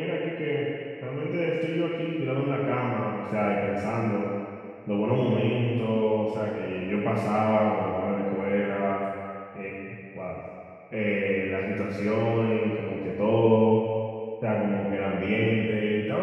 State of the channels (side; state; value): both; identical; correlation 1.00